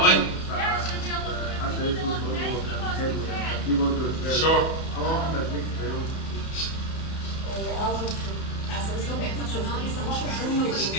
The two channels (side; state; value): right; late; 31 ms